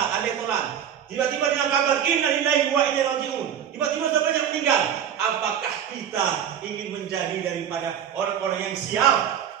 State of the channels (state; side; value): quieter; left; 9.0 dB